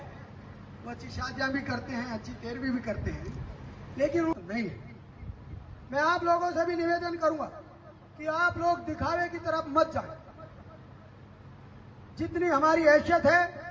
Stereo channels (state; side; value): identical; both; correlation 1.00